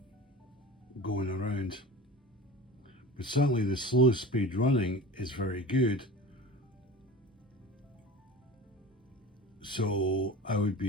going around. But certainly the slow speed running is very good. So I would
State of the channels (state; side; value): normal; both; correlation 0.35